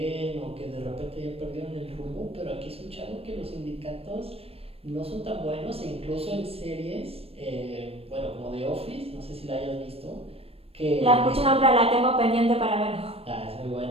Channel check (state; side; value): late; left; 0.28 ms